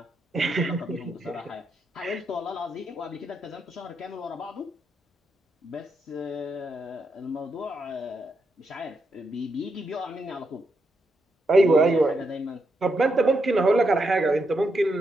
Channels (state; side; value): normal; both; correlation 0.81